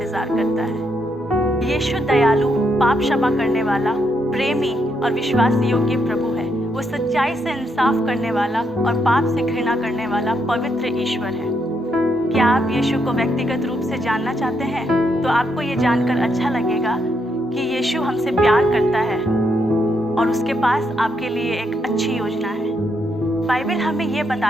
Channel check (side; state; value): both; normal; correlation 0.78